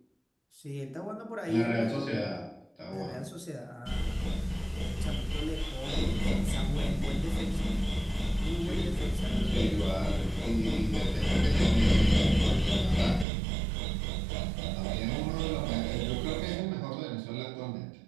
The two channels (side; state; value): left; drops out; at 13.2 s